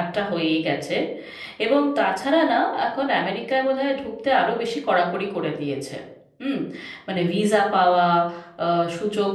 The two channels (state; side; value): identical; both; correlation 1.00